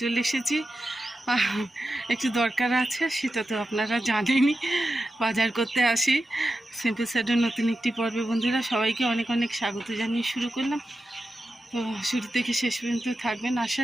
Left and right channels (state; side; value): normal; both; correlation 0.91